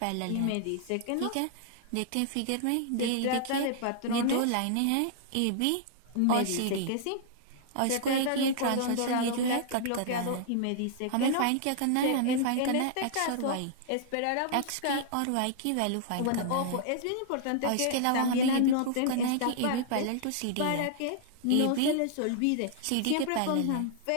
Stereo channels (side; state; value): both; different; correlation -0.01